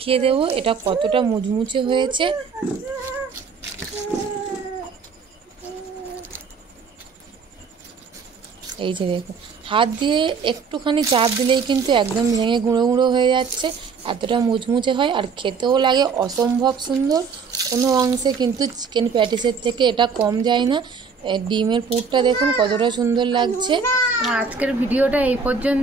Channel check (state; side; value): quieter; left; 5.5 dB